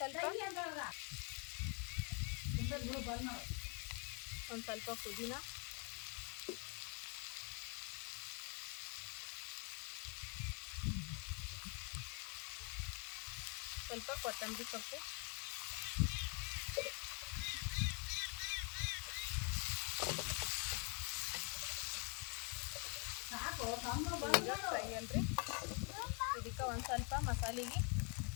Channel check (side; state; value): right; quieter; 35.7 dB